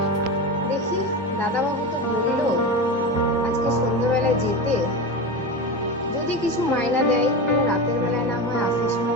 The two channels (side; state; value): both; normal; correlation 0.23